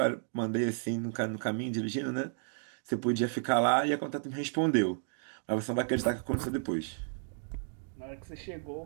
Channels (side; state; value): left; silent; digital silence